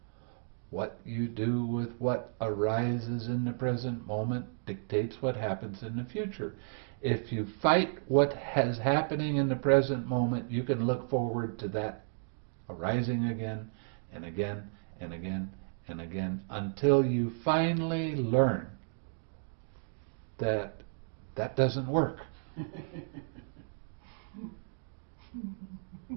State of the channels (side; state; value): left; silent; digital silence